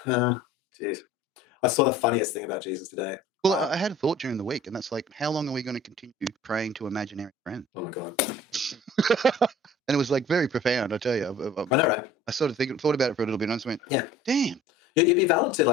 Jeez. I saw the funniest thing about Jesus today. Well, I had a thought during the week, and that's like, how long are we going to continue praying to imaginary friends? Oh my God. And it was like very profound, I tell you. I know, right? I sort of thought about it for a little bit, and I just went, yeah, damn. You'd be valid to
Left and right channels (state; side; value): normal; both; correlation 0.47